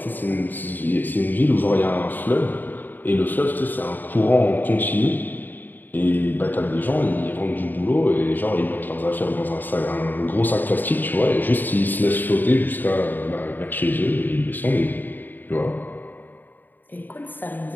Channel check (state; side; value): late; right; 0.089 ms